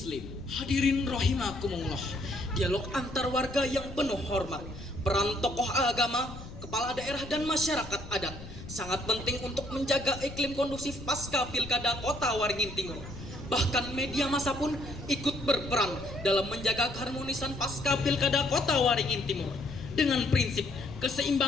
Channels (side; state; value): left; noise; rumble, 13 dB below the sound